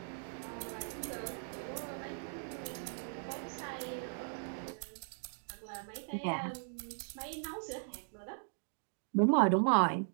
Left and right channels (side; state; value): left; silent; digital silence